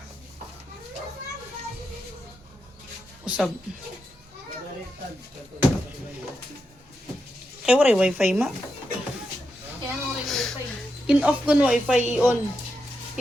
Usab. Kaya waray wifi ma. Kaya ano rin wifi? In-off ko no wifi, i-on.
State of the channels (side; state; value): both; normal; correlation 0.86